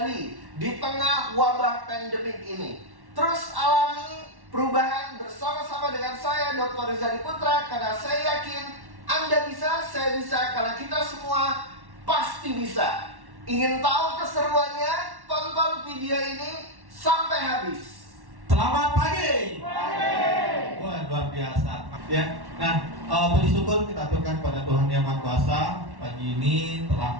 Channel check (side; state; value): left; late; 1.1 ms